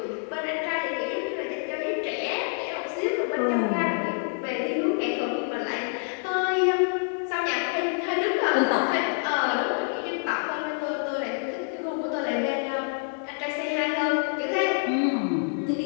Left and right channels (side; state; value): right; silent; 57 dB below the other